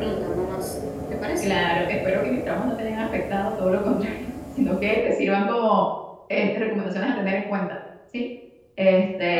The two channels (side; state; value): both; identical; correlation 1.00